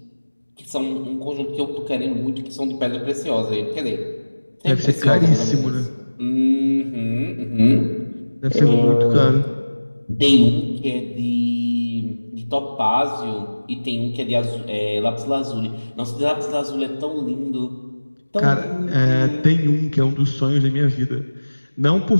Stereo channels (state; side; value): inverted; both; correlation -1.00